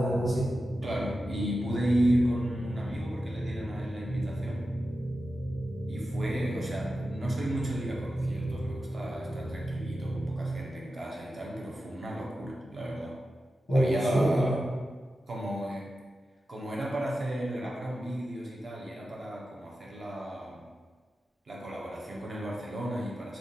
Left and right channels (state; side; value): normal; both; correlation 0.92